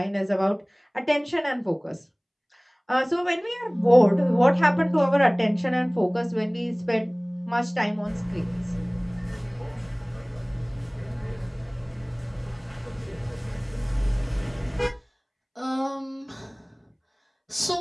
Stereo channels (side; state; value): both; identical; correlation 1.00